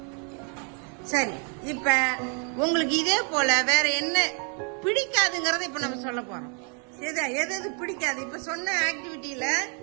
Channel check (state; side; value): quieter; left; 38.8 dB